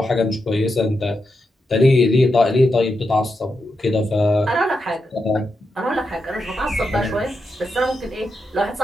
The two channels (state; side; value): normal; both; correlation 0.86